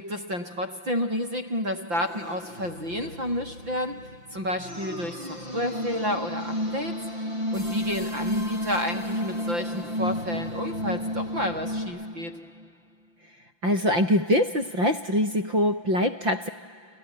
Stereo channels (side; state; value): left; late; 5.8 ms